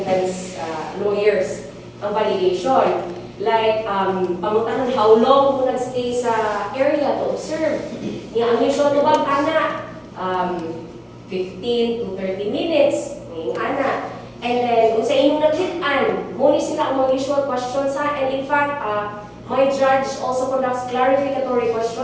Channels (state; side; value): identical; both; correlation 1.00